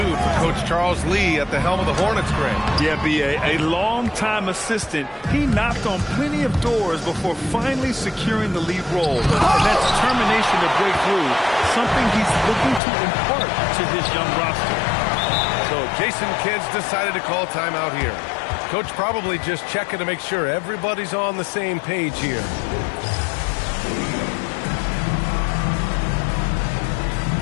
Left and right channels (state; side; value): drops out; right; at 12.8 s